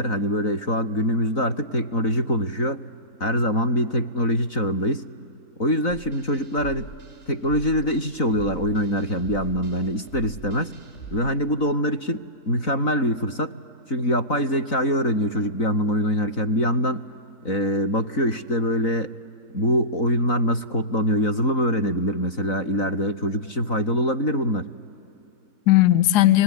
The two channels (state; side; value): late; right; 4.0 ms